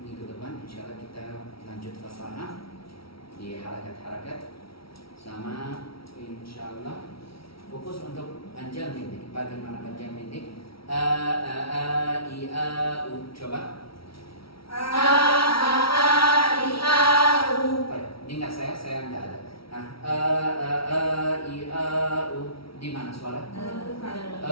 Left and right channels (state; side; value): late; right; 0.75 ms